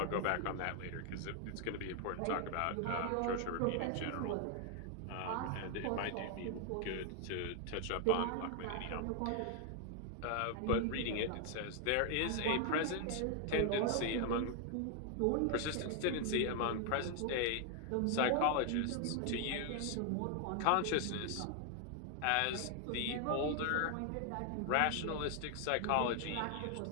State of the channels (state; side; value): different; both; correlation 0.00